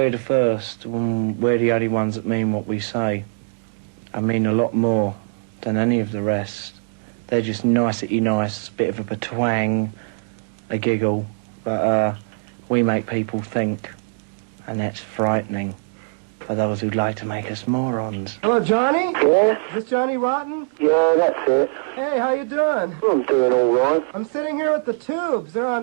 the first, we're the only ones that mean what we say. I mean a lot more than any of the rest. They're just nicety nice, bit of a twang, a giggle, but we make people think, and that's frightening for those who'd like to make us morons. Hello, Johnny? Yeah? Is this Johnny Rotten? Yeah, that's it. Hey, how you doing? I'm doing all right. I'm sitting here with the Tubes. They're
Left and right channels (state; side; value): silent; left; digital silence